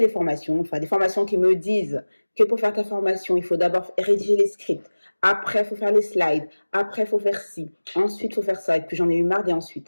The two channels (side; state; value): both; inverted; correlation -1.00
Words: formations, enfin des formations qui me disent que pour faire ta formation, il faut d'abord rédiger les scripts, après il faut faire les slides, après il faut faire ci, ensuite il faut faire ça. Et puis j'en ai eu marre des